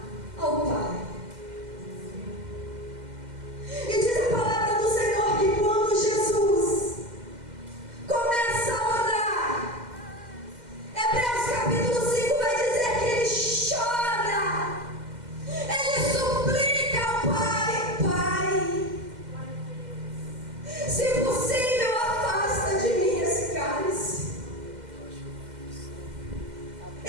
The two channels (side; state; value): left; late; 2.1 ms